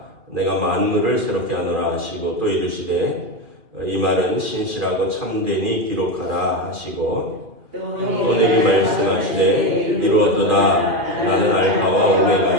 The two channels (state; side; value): late; left; 2.4 ms